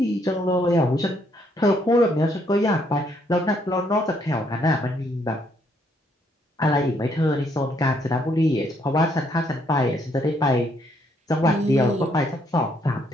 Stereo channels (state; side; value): normal; both; correlation 0.71